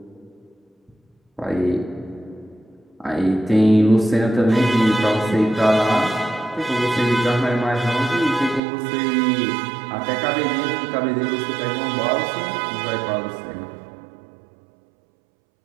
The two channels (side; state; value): left; drops out; at 8.6 s